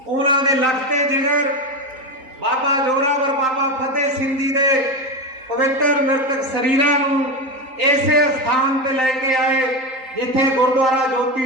उन्होंने लगते जिगर बाबा जोरावर बाबा फतेह सिंह जी के पवित्र मृतक शरीरां नूं इसे स्थान पर लैके आए जिथे गुरुद्वारा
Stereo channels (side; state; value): left; late; 3.8 ms